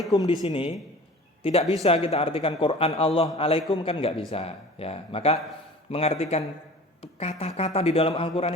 di sini tidak bisa kita artikan Quran Allah alaikum, kan nggak bisa ya. Maka mengartikan kata-kata di dalam Al-Qur'an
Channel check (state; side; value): normal; both; correlation 0.42